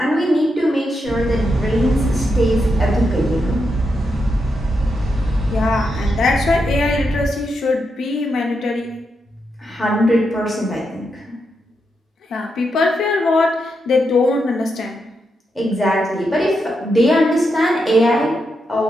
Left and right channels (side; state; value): both; normal; correlation 0.84